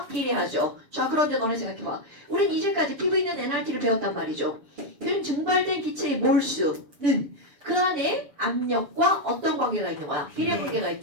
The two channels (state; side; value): late; left; 7.1 ms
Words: 비례하죠. 자, 그런데 너네 생각해봐. 우린 이제까지 PV는 NRT를 배웠단 말이죠. 그럼 증발된 기체의 몰수는 그 안에 압력과 어떤 관계가 있는 거야? 비례 관계가